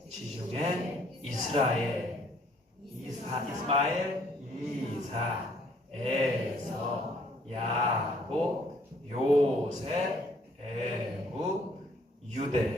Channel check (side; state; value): both; normal; correlation 0.63